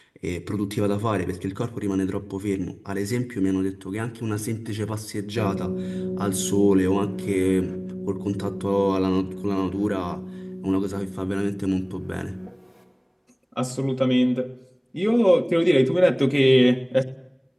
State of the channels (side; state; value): both; identical; correlation 1.00